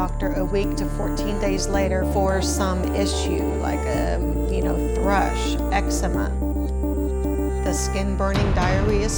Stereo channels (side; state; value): both; identical; correlation 1.00